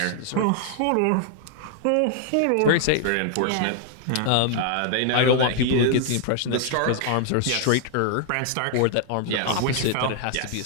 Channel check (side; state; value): both; different; correlation -0.01